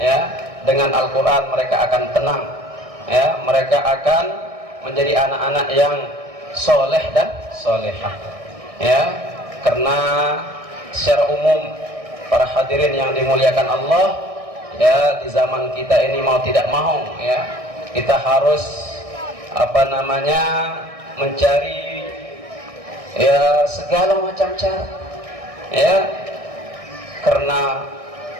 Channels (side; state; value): left; late; 1.6 ms